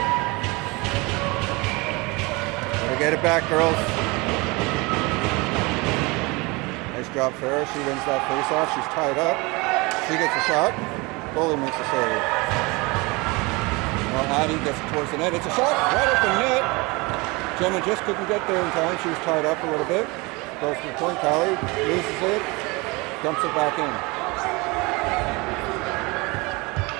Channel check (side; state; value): left; quieter; 25.5 dB